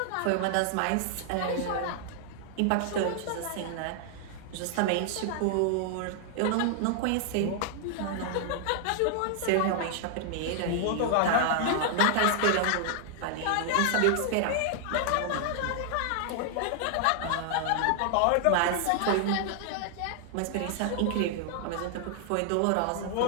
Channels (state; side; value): different; both; correlation 0.00